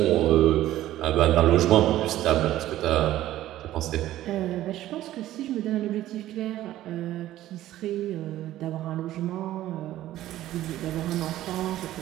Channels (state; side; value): quieter; left; 14.1 dB